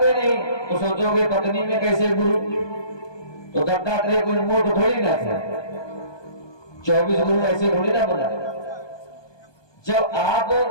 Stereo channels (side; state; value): right; late; 1.2 ms